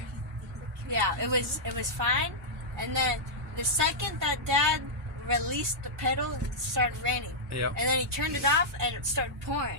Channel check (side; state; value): both; normal; correlation -0.09